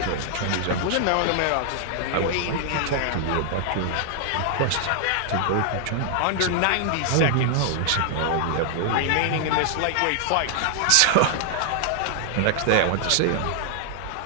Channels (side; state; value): both; different; correlation 0.00